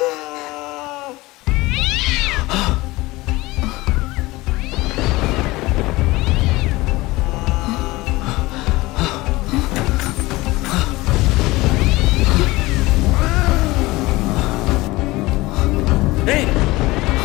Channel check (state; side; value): quieter; right; 20.4 dB